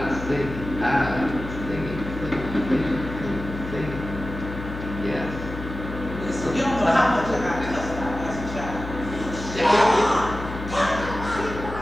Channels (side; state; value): left; noise; hum, 9 dB below the sound